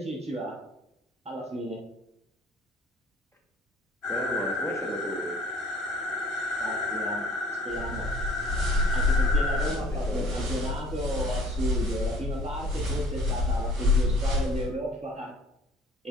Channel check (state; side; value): normal; both; correlation 0.52